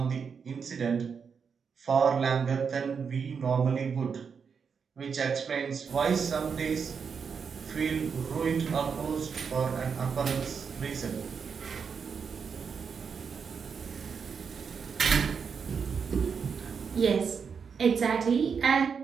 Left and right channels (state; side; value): quieter; left; 6.2 dB